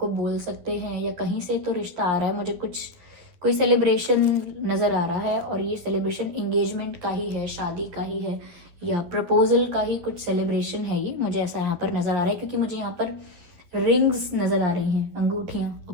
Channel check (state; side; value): late; left; 12 ms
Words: बोल सकते हैं, या कहीं से तो रिश्ता आ रहा है। मुझे कोई सेलिब्रेशन नज़र आ रहा है, और ये सेलिब्रेशन एंगेजमेंट का ही है, शादी का ही है, या प्रपोजल का ही कुछ सेलिब्रेशन है। ये मुझे ऐसा यहाँ पर नज़र आ रहा है, क्योंकि मुझे यहाँ पर रिंग्स नज़र आ रही हैं, अंगूठियाँ।